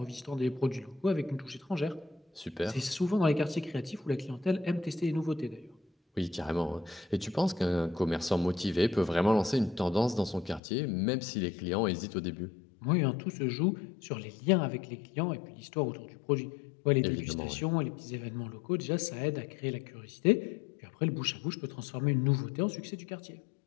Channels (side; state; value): right; drops out; at 10.6 s